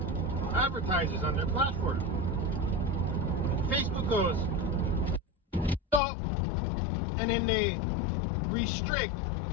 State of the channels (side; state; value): right; drops out; at 6.0 s